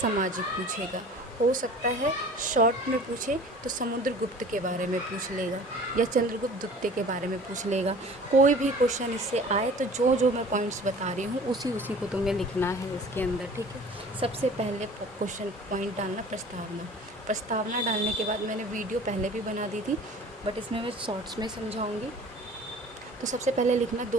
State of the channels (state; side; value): normal; both; correlation 0.45